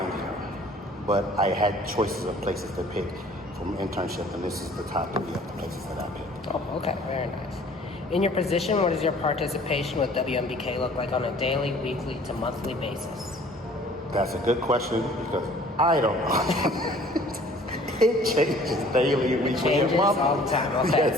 here, but I had choices of places to pick from internship, and this is the top 3 of the places that I picked. Oh, okay. Very nice. In your position, what does your participation with WMBK look like on a daily, weekly, to monthly basis? That's a good question because I don't know. It changes daily, weekly, Changes and monthly. all the time. Okay.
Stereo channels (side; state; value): both; normal; correlation 0.52